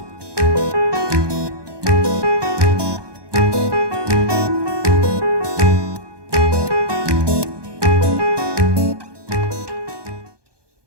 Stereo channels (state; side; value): late; left; 1.2 ms